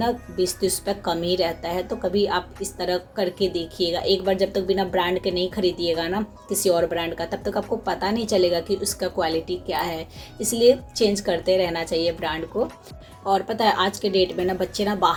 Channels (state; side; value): identical; both; correlation 1.00